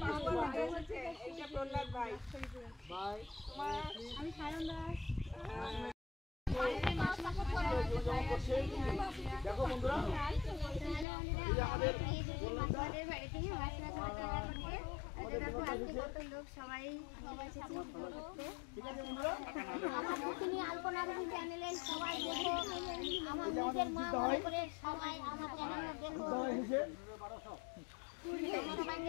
দেখো বন্ধুরা আলপনা রুবি চ্যানেলে সবাই দেখো, আমার নিজের মা মনে করে সবাই আমার চ্যানেলে দেখো।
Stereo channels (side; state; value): right; drops out; at 11.1 s